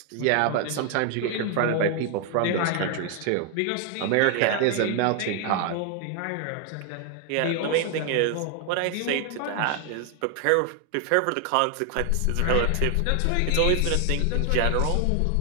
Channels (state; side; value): different; both; correlation 0.00